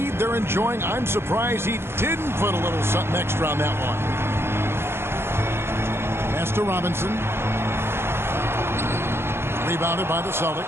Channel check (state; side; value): late; left; 0.12 ms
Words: they're enjoying, I'm surprised he didn't put a little something extra on that one. Pass to Robinson. Rebounded by the